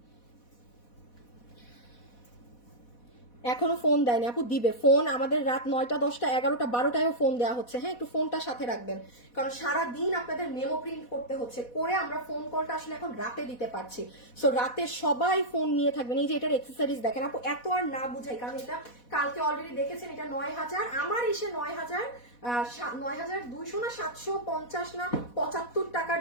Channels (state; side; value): late; right; 4.1 ms